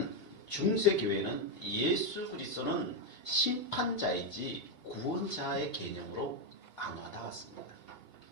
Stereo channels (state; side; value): late; right; 2.8 ms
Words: 중세 교회는 예수 그리스도는 심판자이지 구원자의 개념으로 안 와닿았습니다.